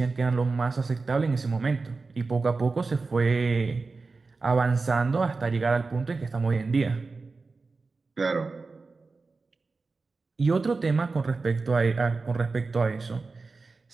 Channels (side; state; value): left; quieter; 4.0 dB